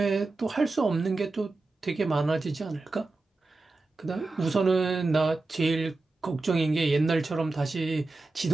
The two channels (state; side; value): quieter; left; 3.4 dB